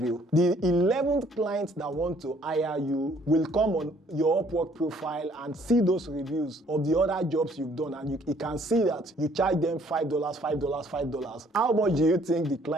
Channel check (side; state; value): both; normal; correlation 0.61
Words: The 11th client that want to hire you will come on your Upwork profile and see those reviews of the other jobs you've done, and you can see that you charge them $5, $5. How much do you think the